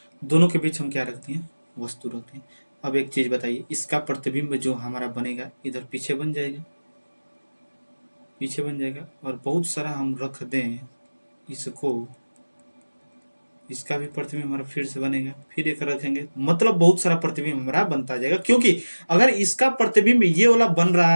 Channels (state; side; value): inverted; both; correlation -1.00